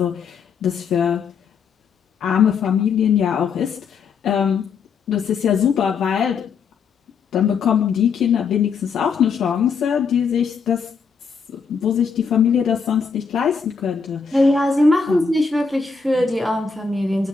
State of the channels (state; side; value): quieter; right; 5.6 dB